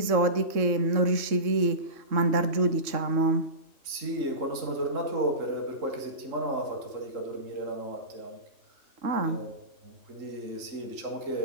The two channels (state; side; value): late; left; 3.6 ms